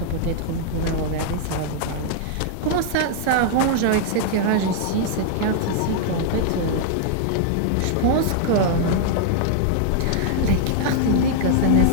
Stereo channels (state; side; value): different; both; correlation -0.01